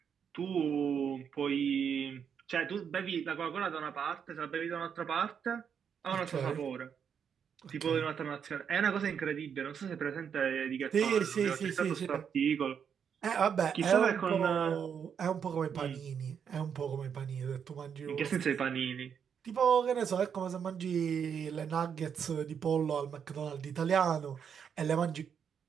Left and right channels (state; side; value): quieter; left; 7.5 dB